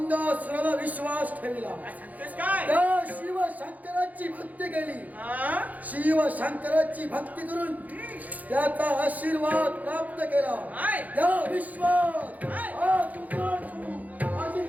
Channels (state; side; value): late; left; 0.078 ms